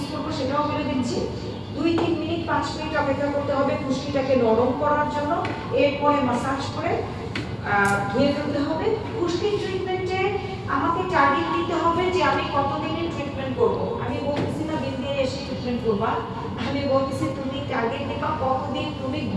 করবো সেটাও বলে দিচ্ছি। 2-3 মিনিট 5 মিনিট অপেক্ষা করতে হবে খুশকিটাকে নরম করার জন্য, এরপরে মাসাজ করে ধুয়ে ফেলতে হবে। খুশকির ট্রিটমেন্টে আমাকে টার্গেট দিতে হবে যে আমি কতদিনের ট্রিটমেন্ট করব। আমি বলতেছি না দিন দিয়ে এসে ট্রিটমেন্ট করবা, আমি বলতেছি তুমি টার্গেট দিবা কতদিন তুমি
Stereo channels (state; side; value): identical; both; correlation 1.00